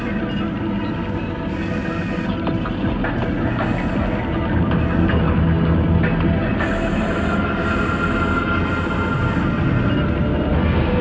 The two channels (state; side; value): identical; both; correlation 1.00